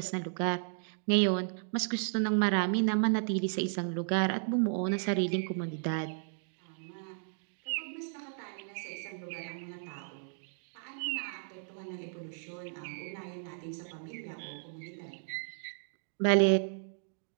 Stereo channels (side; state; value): left; silent; digital silence